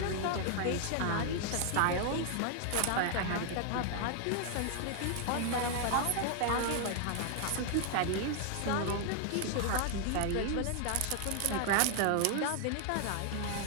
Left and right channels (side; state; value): both; different; correlation 0.00